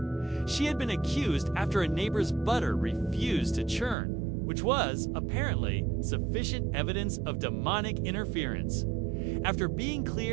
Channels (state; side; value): drops out; left; at 4.0 s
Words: She had been accused after a neighbor's butter refused to churn, which was, apparently, sufficient evidence of demonic interference. After being